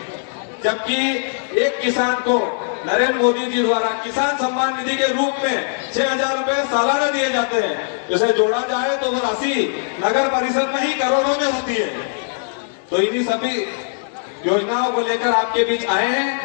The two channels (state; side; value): silent; right; digital silence